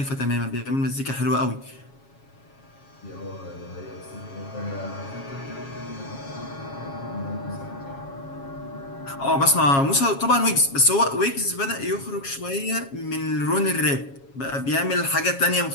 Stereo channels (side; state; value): right; late; 7.3 ms